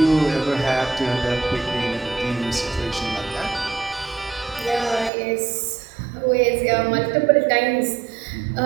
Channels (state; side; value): drops out; left; at 5.1 s